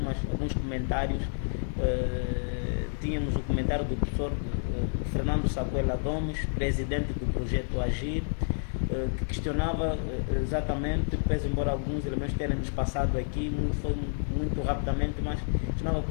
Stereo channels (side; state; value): right; silent; digital silence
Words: comentários. Tínhamos o comentário do professor Fernando Sapuela Gomes, presidente do projeto Agir, que questionava exatamente, pese embora alguns elementos tenham nos passado aqui, foi muito rapidamente, mas questionava